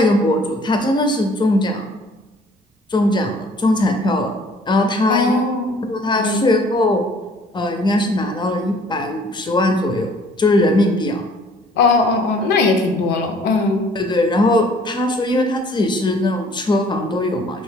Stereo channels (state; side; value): normal; both; correlation 0.56